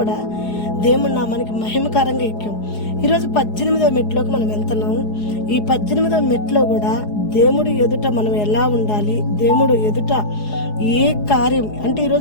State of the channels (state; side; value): late; right; 4.8 ms